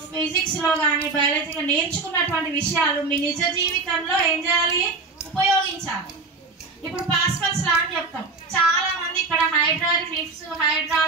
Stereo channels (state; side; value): quieter; left; 3.9 dB